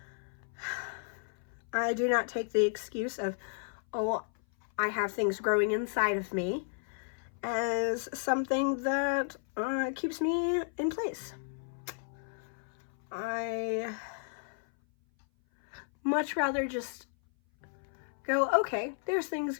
I do not take the excuse of, oh, I have things growing inside of me as something that keeps me in place. I much rather just go, okay, there's things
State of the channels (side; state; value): right; silent; 56 dB below the other